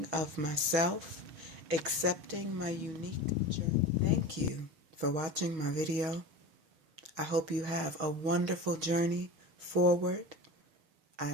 of myself, accepting my unique journey. Thank you for watching my video. I hope you have a wonderful journey forward. I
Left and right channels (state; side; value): late; left; 6.3 ms